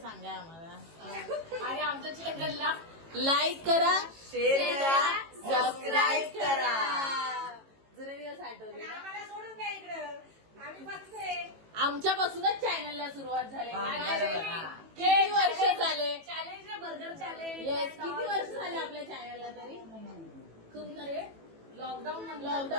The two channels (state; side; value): late; left; 18 ms